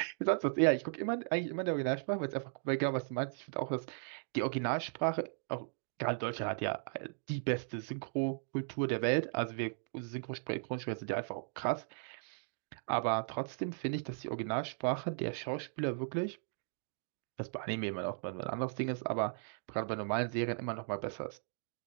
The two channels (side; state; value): left; silent; digital silence